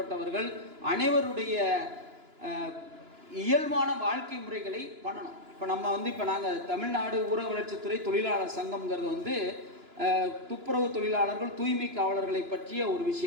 அனைவருடைய இயல்பான வாழ்க்கை முறைகளை பண்ணணும். இப்போ நம்ம இப்போ நாங்கள் தமிழ்நாடு ஊரக வளர்ச்சித்துறை தொழிலாளர் சங்கம்ங்கிறது துப்புரவு தொழிலாளர்கள், தூய்மை காவலர்களை பற்றிய ஒரு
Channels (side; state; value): left; late; 2.9 ms